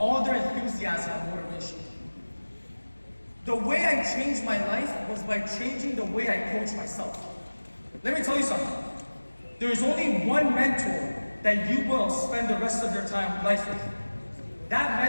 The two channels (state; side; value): inverted; both; correlation -1.00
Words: their enthusiasm and motivation. The way I changed my life was by changing the way I coach myself. Let me tell you something. There is only one mentor that you will spend the rest of your life with.